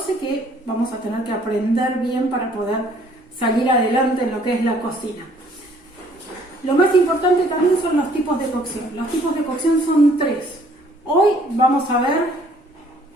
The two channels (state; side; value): normal; both; correlation 0.60